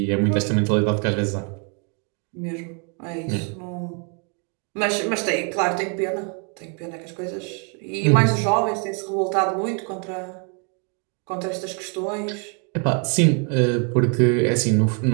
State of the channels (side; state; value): left; quieter; 38.0 dB